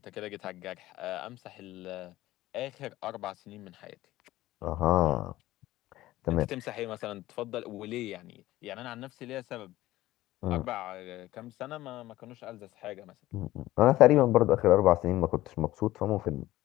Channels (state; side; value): quieter; right; 16.2 dB